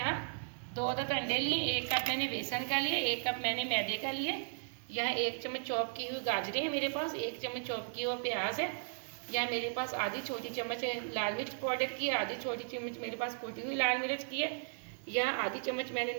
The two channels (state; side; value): silent; left; digital silence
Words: 2 अदद अंडे लिए, 1 कप मैंने बेसन का लिया, 1 कप मैंने मैदे का लिया। यहाँ 1 चम्मच चॉप की हुई गाजरें हैं मेरे पास, 1 चम्मच चॉप की हुआ प्याज है। यहाँ मेरे पास आधी छोटी चम्मच लाल मिर्च पाउडर की है, आधी छोटी चम्मच मेरे पास कुटी हुई लाल मिर्च की है। यहाँ आधी चम्मच मैंने